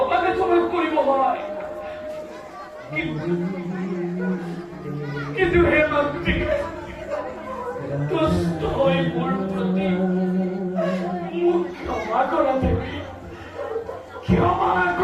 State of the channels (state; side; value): identical; both; correlation 1.00